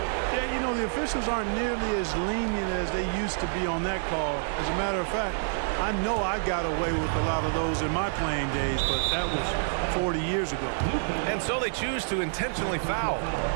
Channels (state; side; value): silent; left; digital silence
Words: Yeah, you know, the officials aren't nearly as lenient as they used to be on that call. As a matter of fact, I know I got away with a lot of those in my playing days, but that was 40 years ago. And so they choose to intentionally foul.